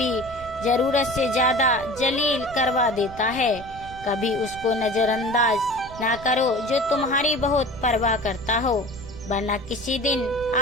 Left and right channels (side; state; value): right; noise; rumble, 16 dB below the sound